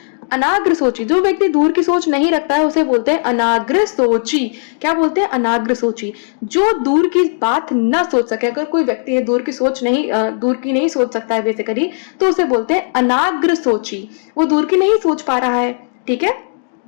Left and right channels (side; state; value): right; silent; 60 dB below the other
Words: अनाग्र सोची, जो व्यक्ति दूर की सोच नहीं रखता है उसे बोलते हैं अनाग्र सोची। क्या बोलते हैं? अनाग्र सोची। जो दूर की बात ना सोच सके, अगर कोई व्यक्ति है दूर की सोच नहीं दूर की नहीं सोच सकता है बेसिकली, तो उसे बोलते हैं अनाग्र सोची। वो दूर की नहीं सोच पा रहा है। ठीक है,